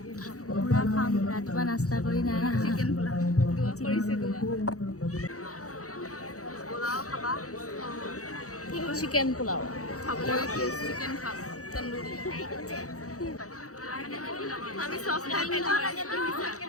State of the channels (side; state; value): right; late; 0.65 ms